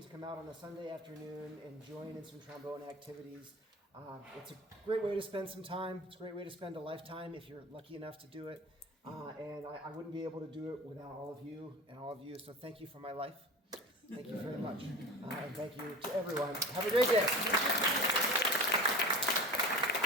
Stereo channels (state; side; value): normal; both; correlation 0.33